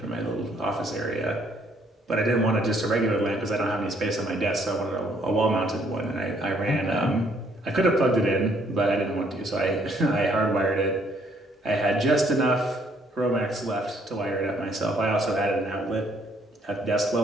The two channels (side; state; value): both; normal; correlation 0.66